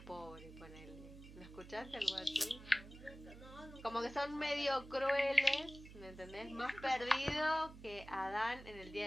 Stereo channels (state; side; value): noise; right; hum, 16 dB below the sound